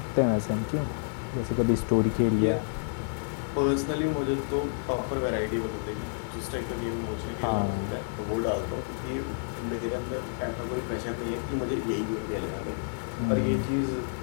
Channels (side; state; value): right; silent; 58 dB below the other